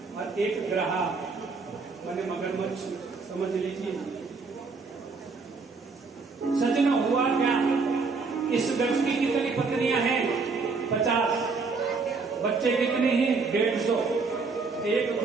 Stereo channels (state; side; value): quieter; left; 4.4 dB